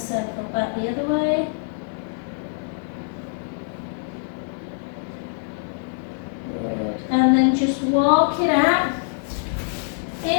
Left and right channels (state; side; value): silent; right; digital silence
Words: back the other way. Good. And then just walk it out